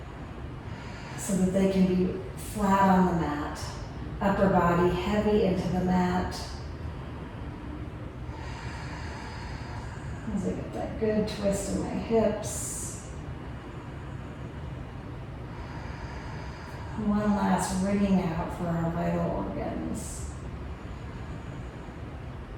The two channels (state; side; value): identical; both; correlation 1.00